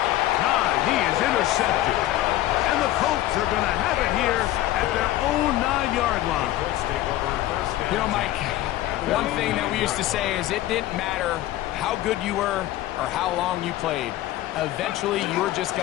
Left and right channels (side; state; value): right; quieter; 14.9 dB